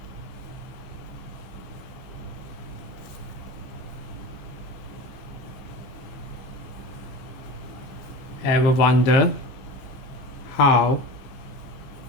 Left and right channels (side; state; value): right; late; 14 ms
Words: Ever wonder how